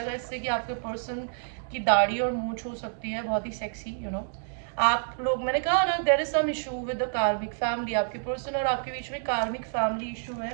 इससे कि आपके पर्सन की दाढ़ी और मूंछ हो सकती है बहुत ही सेक्सी, यू नो। आप लोग, मैंने कहा ना, there is some issue with the karmic family. आपके पर्सन और आपके बीच में कार्मिक फैमिली इशू है।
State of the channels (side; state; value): left; silent; digital silence